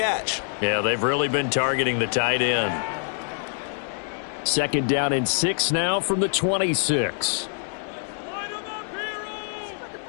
Yeah, they've really been targeting the tight end. 2nd down and 6 now from the 26.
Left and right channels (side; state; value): right; silent; digital silence